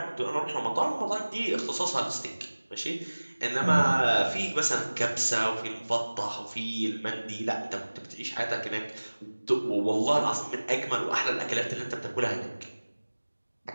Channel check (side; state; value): both; inverted; correlation -1.00